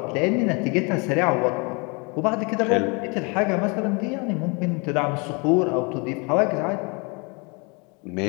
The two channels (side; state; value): right; quieter; 30.9 dB